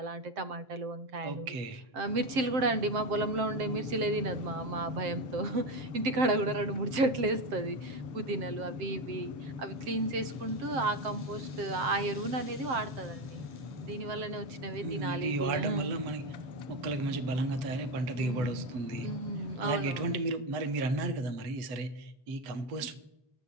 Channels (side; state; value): left; late; 7.6 ms